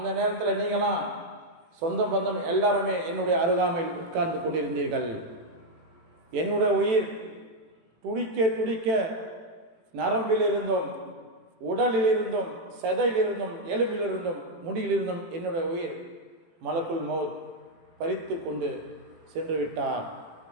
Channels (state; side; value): late; left; 18 ms